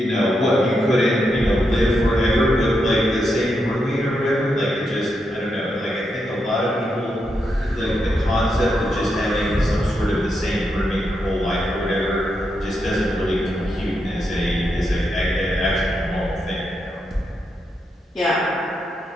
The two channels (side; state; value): both; normal; correlation 0.83